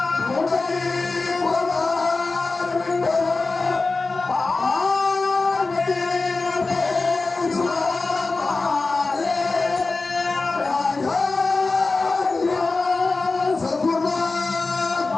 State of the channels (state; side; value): quieter; right; 3.7 dB